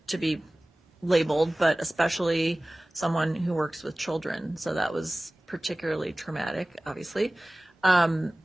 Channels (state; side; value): normal; both; correlation 0.98